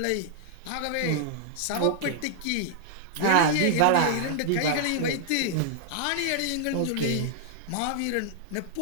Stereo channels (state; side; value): different; both; correlation -0.01